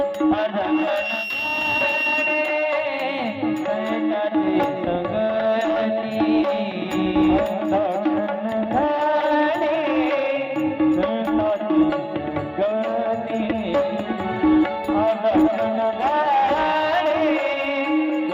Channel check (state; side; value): identical; both; correlation 1.00